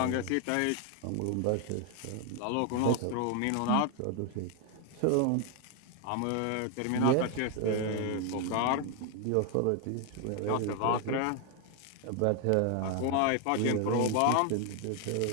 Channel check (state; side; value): different; both; correlation 0.01